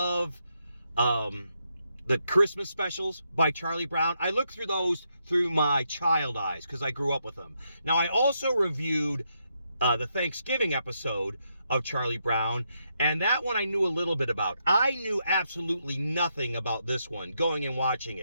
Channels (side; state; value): both; inverted; correlation -0.80